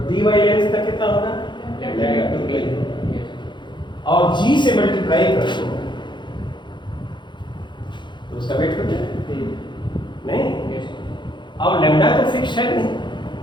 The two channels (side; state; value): right; late; 0.23 ms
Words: dy लेंथ का कितना होगा, लैम्डा, और g से मल्टीप्लाई कर दो तो उसका वेट हो जाए, नहीं। और लैम्डा तो फिक्स है नहीं,